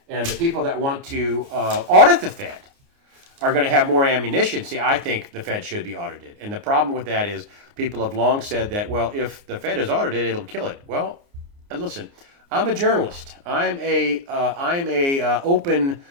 And the people that want to audit the Fed are going to have more ammunition. See, I think the Fed should be audited. And the problem with that is people have long said that, well, if the Fed is audited, it'll kill it. Well, listen, I'm a journalist. I'm a open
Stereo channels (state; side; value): late; left; 29 ms